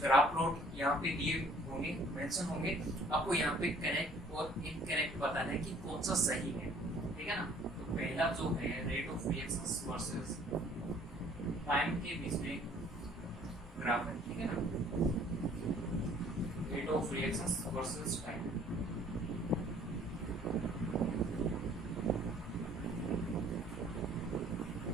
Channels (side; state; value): both; normal; correlation 0.56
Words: प्लॉट यहाँ पे दिए होंगे, मेंशन होंगे, आपको यहाँ पे करेक्ट और इनकरेक्ट बताना है कि कौन सा सही है, ठीक है ना। तो पहला जो है rate of reactions versus time के बीच में ग्राफ है, ठीक है ना, rate of reactions versus time.